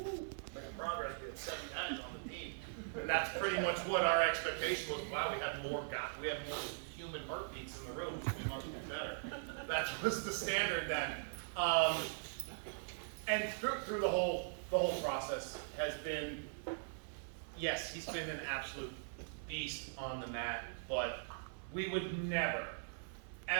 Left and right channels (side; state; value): left; silent; digital silence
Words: making progress. We had 7 guys on the team, and that's pretty much what our expectation was. Wow, we have more human heartbeats in the room, so we must be better. That was the standard then. And through the whole process has been, yes, he's been an absolute beast on the mat, but we would never,